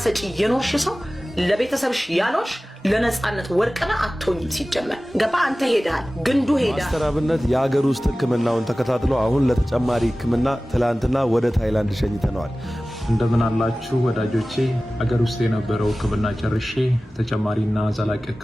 የኖርሽ ሰው ለቤተሰብሽ ያኖርሽ ለነጻነት ወርቅና አትሆኝም። ሲጀመር ገባ አንተ ሄዳል ግንዱ ሄዳ ማስተር አብነት የሀገር ውስጥ ሕክምናውን ተከታትሎ አሁን ለተጨማሪ ሕክምና ትላንትና ወደ ታይላንድ ሸኝተነዋል። እንደምን አላችሁ ወዳጆቼ? ሀገር ውስጥ የነበረው ሕክምና ጨርሼ ተጨማሪና ዘላቂ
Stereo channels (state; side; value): normal; both; correlation 0.97